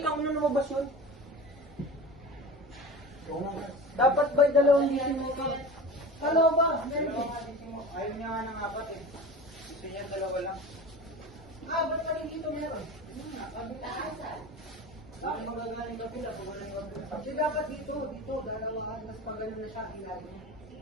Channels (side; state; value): both; normal; correlation 0.33